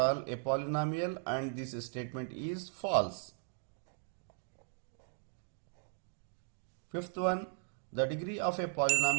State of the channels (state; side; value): silent; left; digital silence